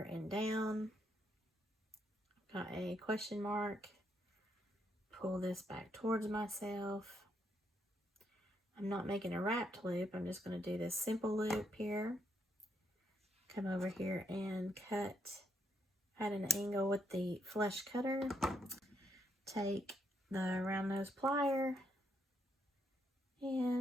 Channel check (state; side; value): normal; both; correlation 0.76